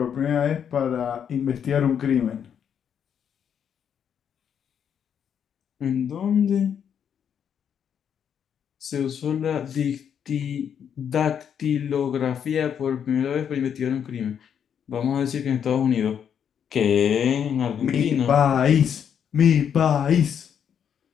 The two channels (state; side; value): quieter; right; 8.2 dB